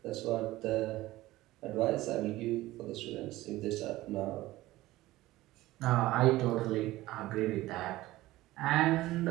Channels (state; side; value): quieter; left; 17.3 dB